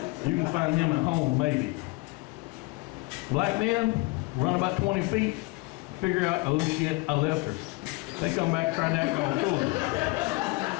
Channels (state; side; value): quieter; right; 24.7 dB